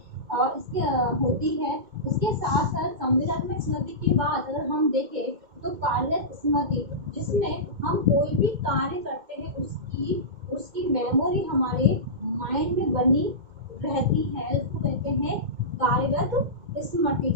और इसके साथ साथ संवेदनात्मक स्मृति के बाद अगर हम देखें तो कार्यरत स्मृति, जिसमें हम कोई भी कार्य करते हैं उसकी मेमोरी हमारे माइंड में बनी रहती है, उसको कहते हैं कार्यरत स्मृति।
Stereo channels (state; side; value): late; left; 2.1 ms